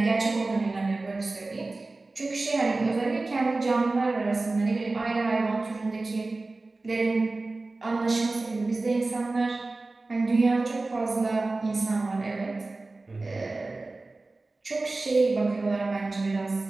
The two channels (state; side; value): quieter; left; 3.3 dB